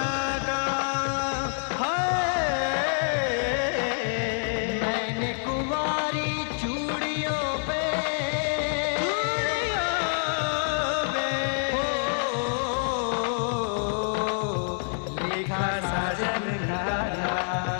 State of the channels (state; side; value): silent; right; digital silence